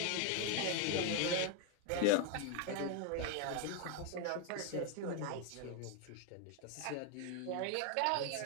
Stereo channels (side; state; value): both; different; correlation 0.01